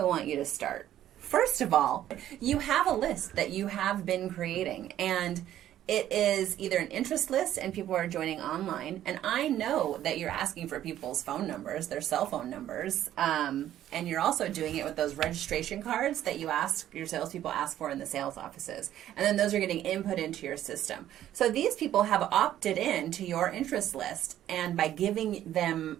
want you to start. First of all, you have a list that you have been creating, and it is either an interest list and people are joining online. And I know that you're asking for people's phone numbers, their cell phone numbers. And you're also doing it with those registration cards that your salespeople ask for in the sales offices. And then those are getting input into your system. So these people have opted in to your interest list. And by giving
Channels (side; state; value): left; quieter; 12.1 dB